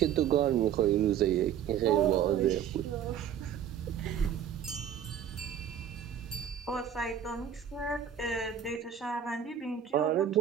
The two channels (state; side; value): quieter; left; 9.0 dB